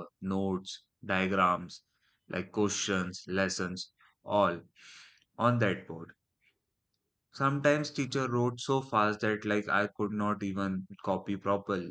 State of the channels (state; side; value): identical; both; correlation 1.00